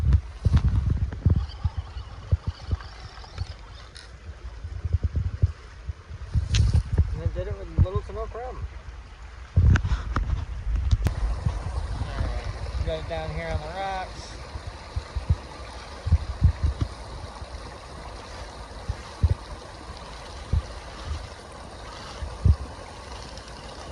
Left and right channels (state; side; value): identical; both; correlation 1.00